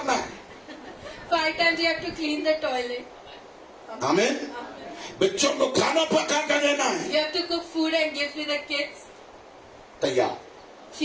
है। 5 times you have to clean the toilet. आमीन। बच्चों को खाना पका कर देना है। You have to cook food and give to the kids. तैयार,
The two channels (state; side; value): identical; both; correlation 1.00